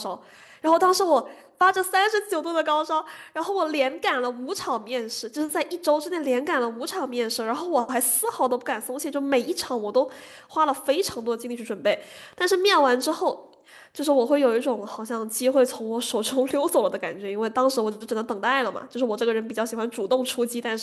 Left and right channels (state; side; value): identical; both; correlation 1.00